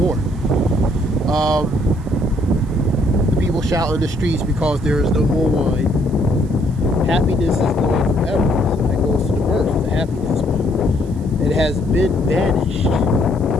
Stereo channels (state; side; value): noise; right; hiss, 28 dB below the sound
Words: The people shout in the streets because there is no more wine. Happiness is gone forever. So that goes to the mirth, the happiness, man. It has been banished